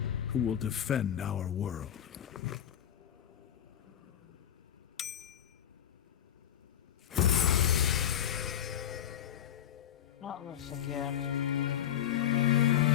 who will defend our world. Not this again.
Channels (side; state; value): right; quieter; 10.6 dB